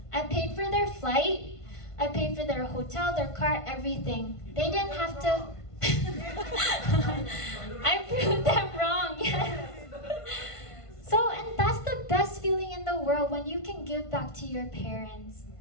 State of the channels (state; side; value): late; right; 1.5 ms